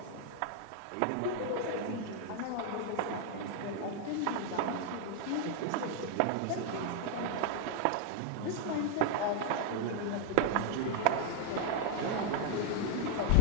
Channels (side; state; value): both; different; correlation 0.00